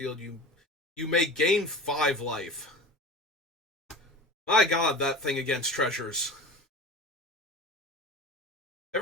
you may gain 5 life. My god, that thing against treasures.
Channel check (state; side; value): normal; both; correlation 0.35